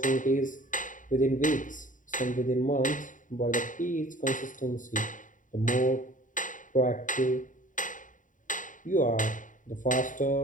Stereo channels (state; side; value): late; right; 0.38 ms